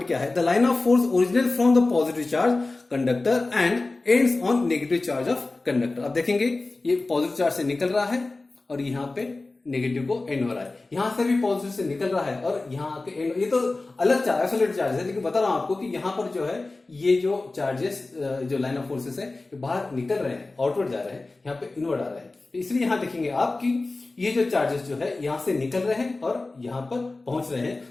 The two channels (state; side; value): quieter; right; 3.3 dB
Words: क्या है? The line of force originate from the positive charge conductor and ends on negative charge of conductor. आप देखेंगे ये पॉजिटिव चार्ज से निकल रहा है और यहां पे नेगेटिव को एंड हो रहा है। यहां से भी पॉजिटिव से निकल रहा है और यहां आके एंड। ये तो अलग चार्ज, आइसोलेटेड चार्ज है, लेकिन बता रहा हूं आपको कि यहां पर जो है ये जो चार्जेस, जो लाइन ऑफ फोर्सेस है, ये बाहर निकल रहे हैं, आउटवर्ड जा रहे हैं, यहाँ पे इनवर्ड आ रहे हैं। इसलिए यहां देखेंगे आप कि ये जो चार्जेस जो है यहां से निकल रहे हैं और यहां पर पहुंच रहे